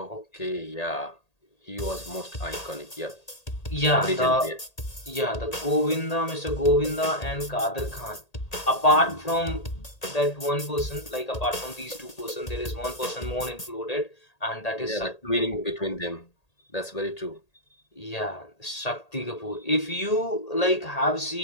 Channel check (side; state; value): right; late; 1.8 ms